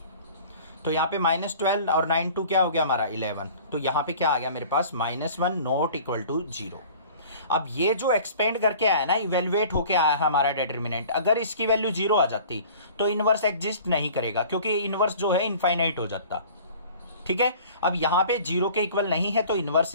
तो यहाँ पे -12 और 9 2 क्या हो गया हमारा 11, तो यहाँ पे क्या आ गया मेरे पास -1 नॉट इक्वल टू 0। अब ये जो एक्सपेंड करके आया ना, इवेल्युएट होके आया है हमारा डिटर्मिनेंट, अगर इसकी वैल्यू 0 आ जाती तो इनवर्स एग्जिस्ट नहीं करेगा, क्योंकि इनवर्स जो है इनफाइनाइट हो जाता, ठीक है। अब यहाँ पे 0 के इक्वल नहीं है तो इनवर्स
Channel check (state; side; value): inverted; both; correlation -0.46